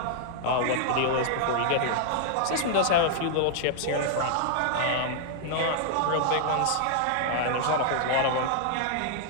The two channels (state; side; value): different; both; correlation -0.01